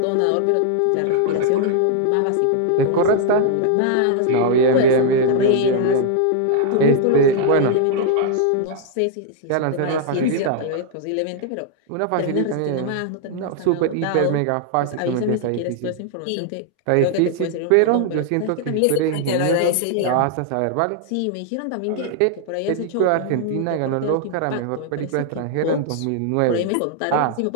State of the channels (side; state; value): both; different; correlation 0.00